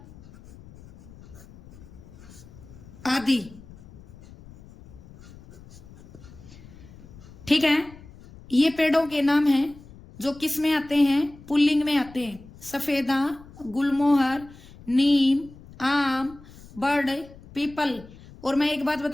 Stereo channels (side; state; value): left; noise; rumble, 20 dB below the sound